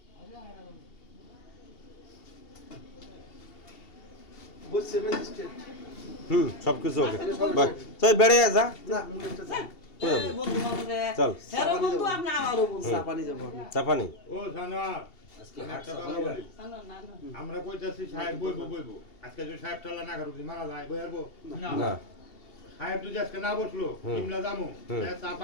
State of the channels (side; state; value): right; late; 2.8 ms